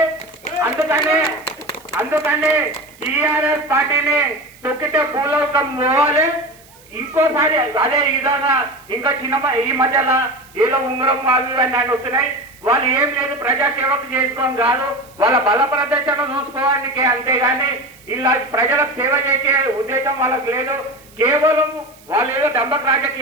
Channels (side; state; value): right; noise; hiss, 26 dB below the sound